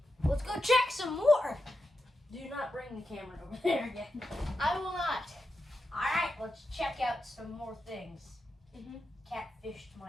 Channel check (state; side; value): normal; both; correlation 0.88